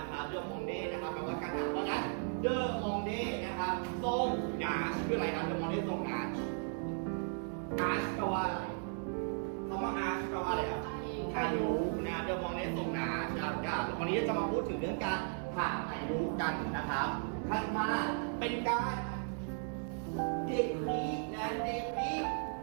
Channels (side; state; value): left; silent; 54 dB below the other